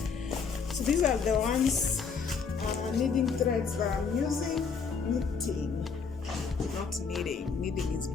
these are the ones knitting threads that I'm using. Knitting, not kneading. Kneading is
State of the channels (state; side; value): quieter; right; 5.6 dB